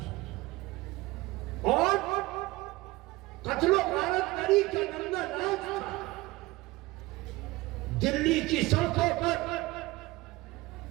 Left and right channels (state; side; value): quieter; left; 20.4 dB